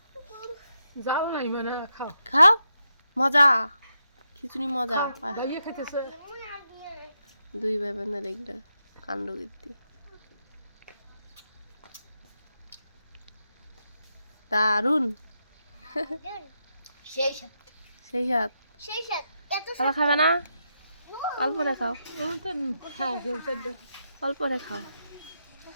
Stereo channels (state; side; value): inverted; both; correlation -0.83